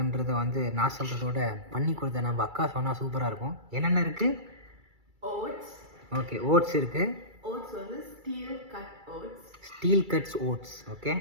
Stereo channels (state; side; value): late; left; 2.3 ms